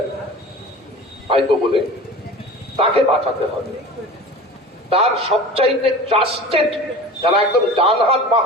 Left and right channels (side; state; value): both; normal; correlation 0.37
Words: ভাইপো বলে, তাকে বাঁচাতে হবে। তার সবচাইতে ট্রাস্টেড যারা একদম ডান হাত বাঁ